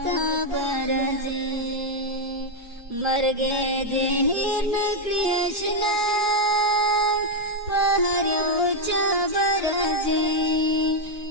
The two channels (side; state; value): both; normal; correlation 0.01